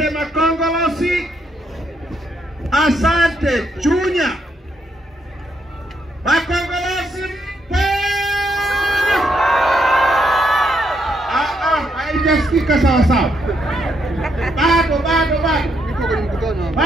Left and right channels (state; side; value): normal; both; correlation 0.76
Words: Makongolosi, asante Chunya. Makongolosi mpo! Haijasikika sawa sawa. Bado.